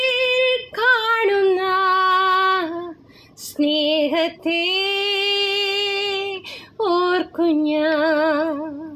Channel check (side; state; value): both; identical; correlation 1.00